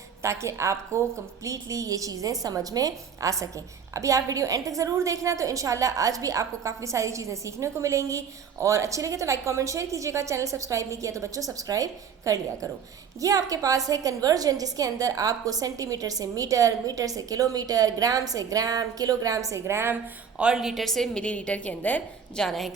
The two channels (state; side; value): quieter; left; 7.0 dB